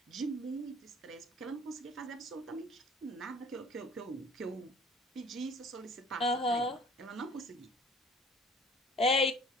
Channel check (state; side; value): normal; both; correlation 0.50